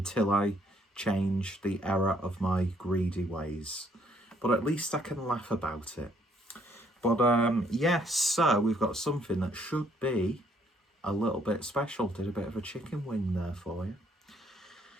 I change the error of my greedy ways. But at least I can laugh about it. But yes, so we've got something that should be a little bit special. Did a bit of a chicken wing there for you.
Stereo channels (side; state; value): both; normal; correlation 0.67